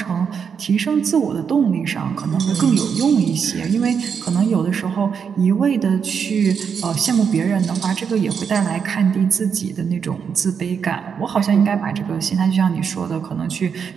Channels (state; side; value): quieter; left; 6.7 dB